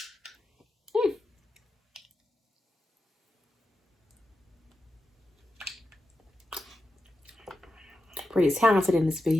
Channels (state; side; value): normal; both; correlation 0.90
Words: Pretty talented in this